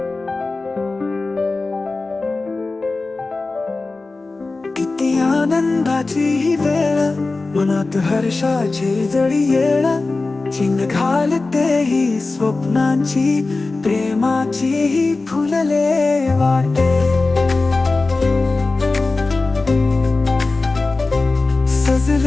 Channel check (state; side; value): quieter; right; 3.5 dB